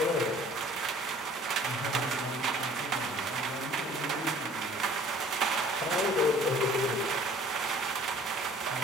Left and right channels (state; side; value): normal; both; correlation 0.51